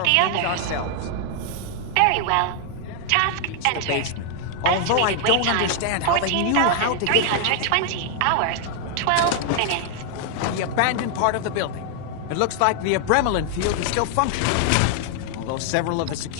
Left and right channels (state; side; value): different; both; correlation 0.00